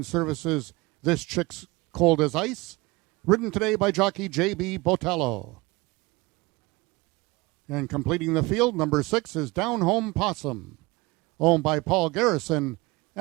Services This Chick's Cold as Ice, ridden today by jockey J.B. Botello. And completing the field, number 6 is Down Home Possum, owned by Paul Garrison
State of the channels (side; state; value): left; quieter; 23.2 dB